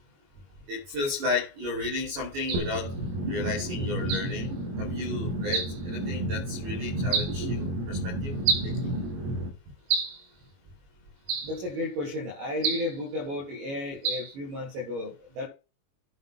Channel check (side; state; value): left; late; 22 ms